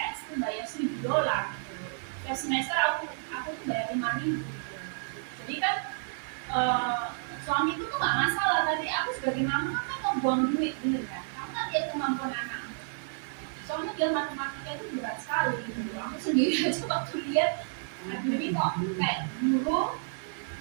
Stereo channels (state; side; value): silent; left; digital silence